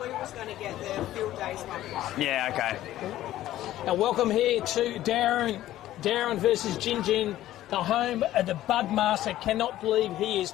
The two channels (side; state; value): right; quieter; 14.0 dB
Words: We was going to get the field days one. Yeah, okay. Now welcome here to Dowerin versus Gingin, the home of the Budmaster. Cannot believe he is